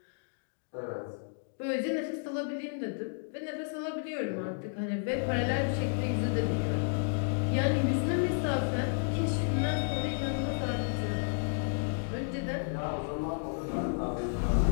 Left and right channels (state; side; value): silent; right; digital silence